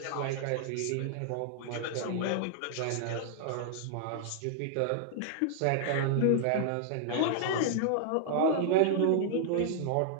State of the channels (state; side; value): different; both; correlation -0.01